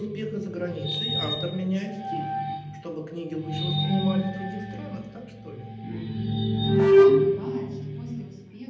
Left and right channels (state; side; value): identical; both; correlation 1.00